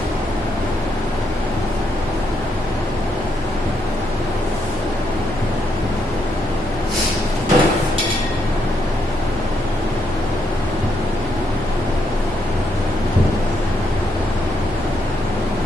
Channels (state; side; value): normal; both; correlation 0.77